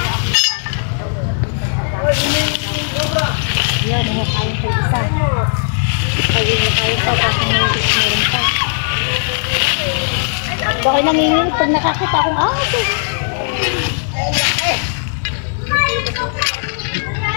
Yan, mukhain ko isa. Ayun, mukhain pa. Tapos meron pa. Bakit nanginginig pag nakakita akong ahas?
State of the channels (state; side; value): silent; right; digital silence